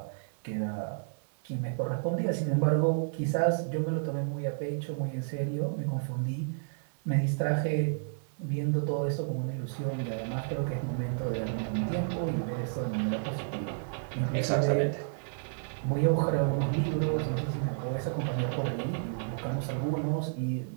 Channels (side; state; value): left; silent; 57 dB below the other